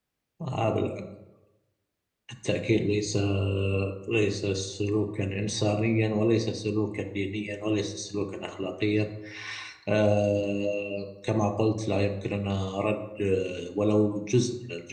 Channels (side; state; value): both; identical; correlation 1.00